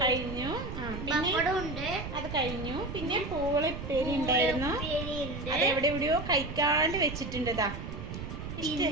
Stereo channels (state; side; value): noise; right; rumble, 7 dB below the sound